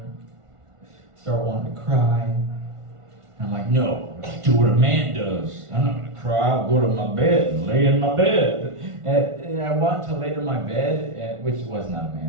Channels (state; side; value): late; left; 1.5 ms